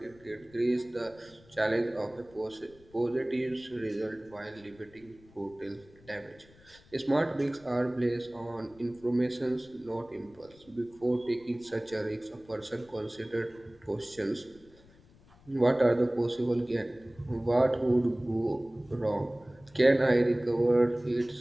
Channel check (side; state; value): left; noise; rumble, 26 dB below the sound